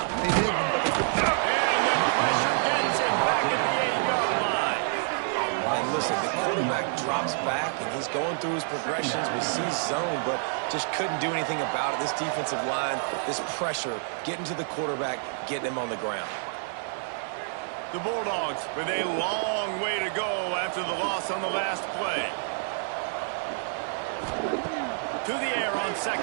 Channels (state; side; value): silent; left; 59 dB below the other